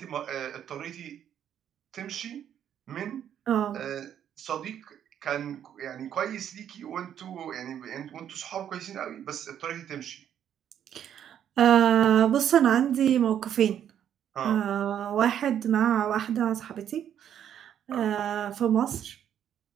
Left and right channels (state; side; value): quieter; left; 9.7 dB